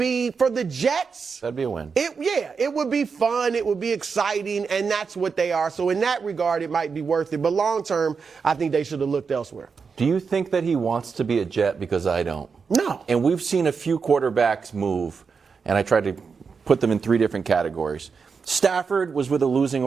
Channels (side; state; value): left; quieter; 5.5 dB